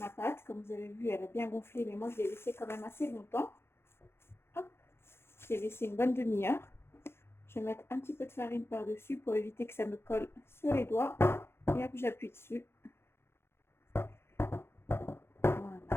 pâte. Comme vous avez vu, elle a bien gonflé, mais moi, je l'ai laissée quand même assez longtemps. Hop, je l'ai laissé une bonne demi-heure. Je vais mettre un petit peu de farine par-dessus pour éviter que ça me colle sur les doigts. Et hop, j'appuie dessus. Voilà.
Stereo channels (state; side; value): late; right; 0.12 ms